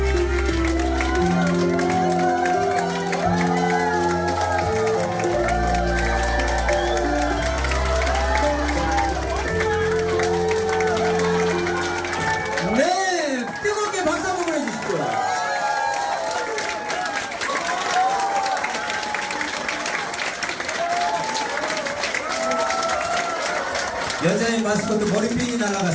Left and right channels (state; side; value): identical; both; correlation 1.00